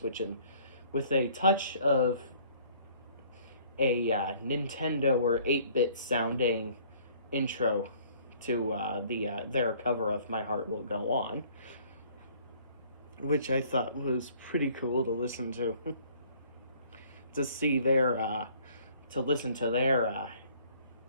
with a touch of a Nintendo or 8-bit sounding intro to their cover of My Heart Will Go On, which I thought was pretty cool to listen to. To listen to their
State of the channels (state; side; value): inverted; both; correlation -0.57